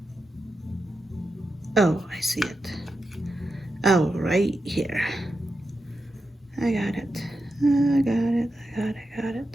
Oh, I see it. Oh, right here. I got it. I got it. I got it. I got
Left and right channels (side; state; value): both; normal; correlation 0.88